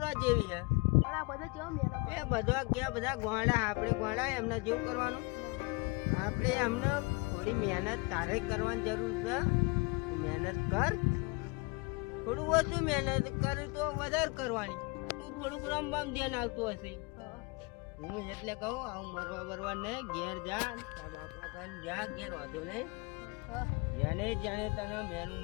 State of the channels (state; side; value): quieter; right; 27.6 dB